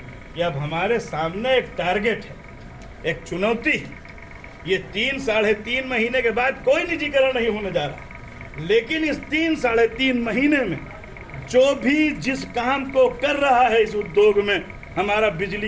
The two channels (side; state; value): both; identical; correlation 1.00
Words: कि अब हमारे सामने एक टारगेट है, एक चुनौती है। ये 3-3.5 महीने के बाद कोई निजीकरण नहीं होने जा रहा, लेकिन इस 3-3.5 महीने में जो भी जिस काम को कर रहा है इस उद्योग में हमारा बिजली